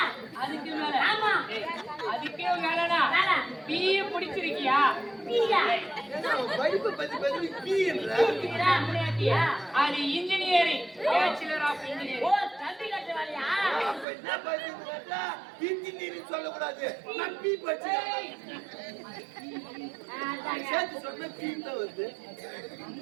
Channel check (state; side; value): drops out; left; at 14.1 s